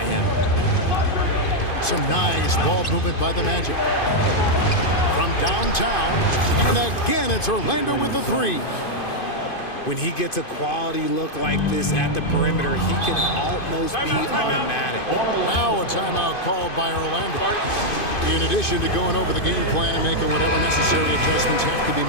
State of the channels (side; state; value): right; late; 2.5 ms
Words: him. Some nice ball movement by the Magic. From downtown, and again it's Orlando with the three. When he gets a quality look like this at the perimeter, he can almost be automatic. Now a timeout called by Orlando. In addition to going over the game plan and making whatever necessary adjustments have to be